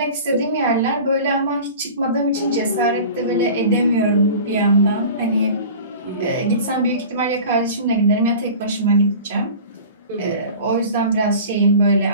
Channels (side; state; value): both; inverted; correlation -0.39